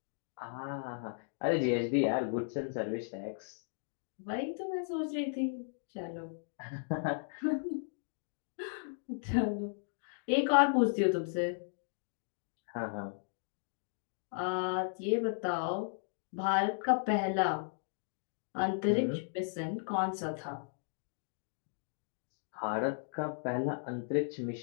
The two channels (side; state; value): right; silent; digital silence